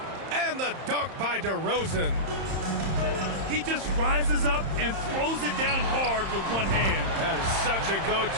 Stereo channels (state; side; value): late; left; 31 ms